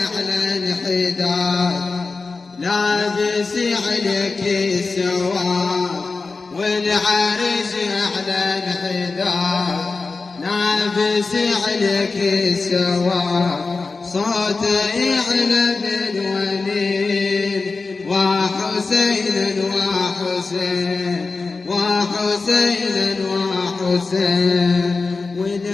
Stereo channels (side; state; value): right; quieter; 4.0 dB